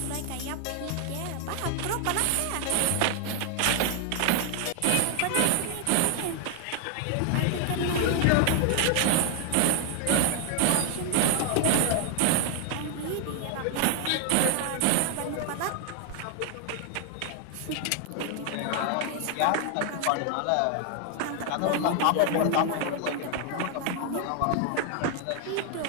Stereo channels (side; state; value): both; different; correlation 0.00